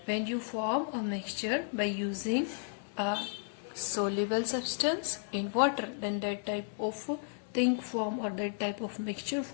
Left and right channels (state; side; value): silent; right; digital silence